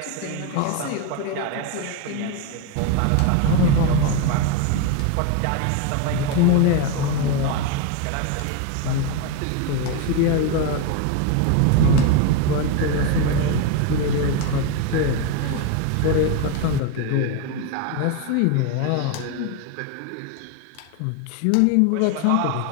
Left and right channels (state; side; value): different; both; correlation 0.02